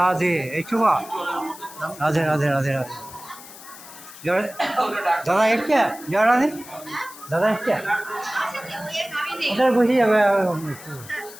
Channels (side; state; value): left; noise; hiss, 17 dB below the sound